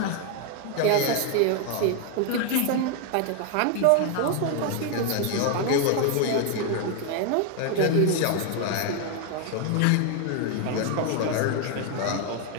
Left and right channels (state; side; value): different; both; correlation 0.01